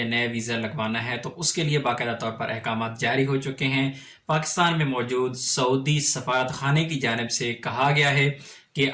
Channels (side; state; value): both; identical; correlation 1.00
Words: نیا ویزا لگوانا ہے، تو اس کے لیے باقاعدہ طور پر احکامات جاری ہو چکے ہیں۔ پاکستان میں موجود سعودی سفارت خانے کی جانب سے کہا گیا ہے کہ